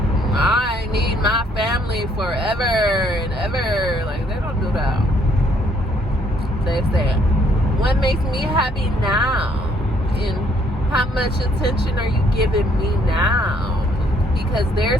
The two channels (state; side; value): normal; both; correlation 0.66